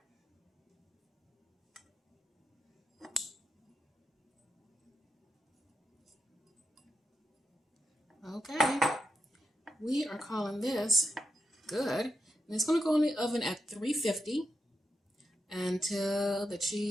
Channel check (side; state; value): both; normal; correlation 0.87